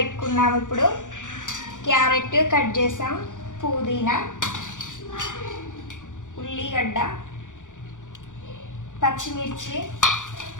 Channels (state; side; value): late; right; 0.87 ms